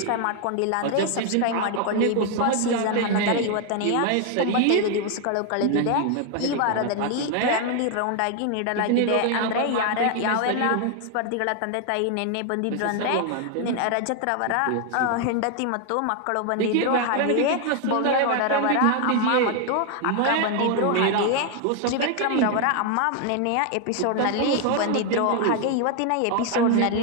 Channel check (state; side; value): different; both; correlation 0.00